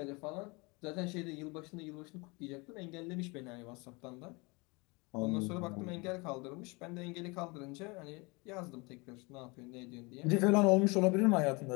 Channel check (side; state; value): right; quieter; 27.3 dB